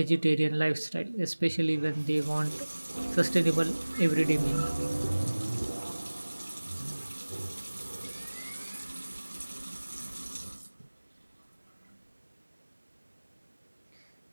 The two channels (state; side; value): inverted; both; correlation -1.00